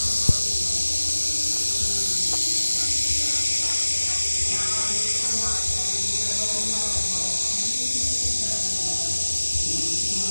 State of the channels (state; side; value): inverted; both; correlation -1.00